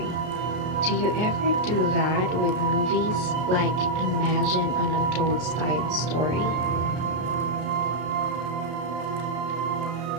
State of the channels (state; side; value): late; left; 33 ms